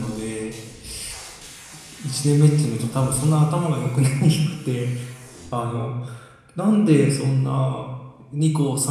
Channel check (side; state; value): both; identical; correlation 1.00